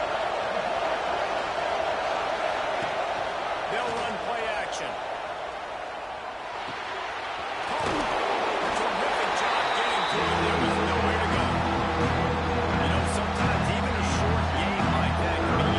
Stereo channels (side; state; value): both; identical; correlation 1.00